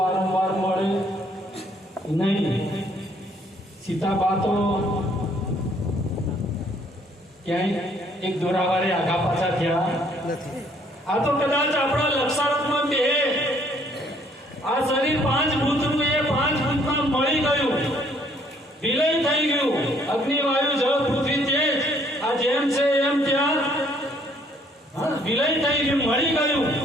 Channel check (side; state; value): both; normal; correlation 0.64